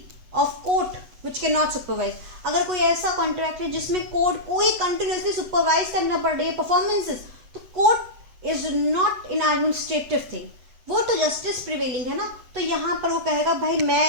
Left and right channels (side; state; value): left; late; 7.9 ms